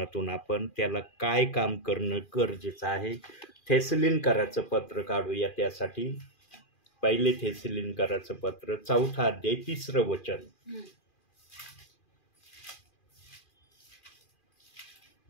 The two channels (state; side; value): late; right; 2.4 ms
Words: आपण त्याला काय काम करणं गरजेचं आहे. थेसलिनकराचं पत्र काढूया त्यासाठी. पहिले थेसलिनकराचं पत्र 4 अध्याय 3 वचन.